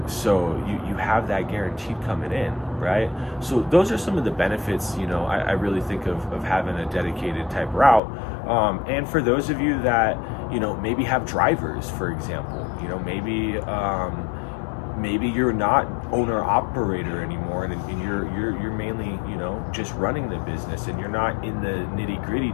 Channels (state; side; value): drops out; right; at 8.0 s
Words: so you have that guaranteed coming in, right? So those are some of the benefits I really think of having a dedicated type route. And for those of you that maybe have drivers, for example, maybe you're not owner operator anymore, and you're mainly just running the business, and you're not in the nitty gritty